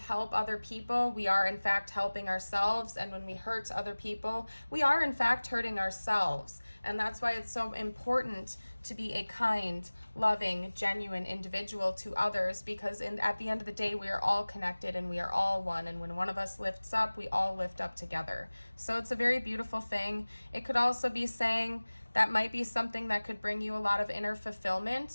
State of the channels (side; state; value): both; inverted; correlation -1.00